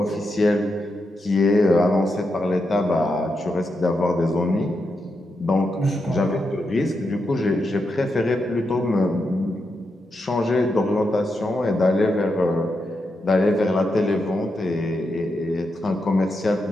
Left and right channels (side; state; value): both; normal; correlation 0.85